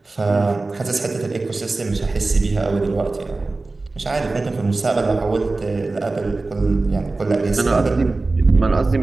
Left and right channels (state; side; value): quieter; left; 3.4 dB